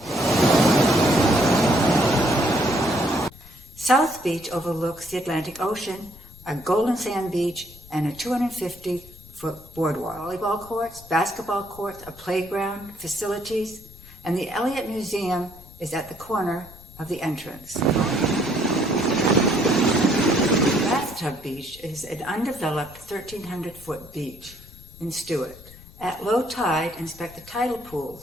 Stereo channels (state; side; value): noise; left; rumble, 20 dB below the sound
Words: South Beach overlooks the Atlantic Ocean, a golden sand beach, and a 250-foot boardwalk. Volleyball courts, basketball courts, a playground, facilities, and the Elliott Museum is at the corner of the entrance. Bathtub Beach is an undeveloped 1,300-foot beach in Stewart. At low tide, inspect the tidal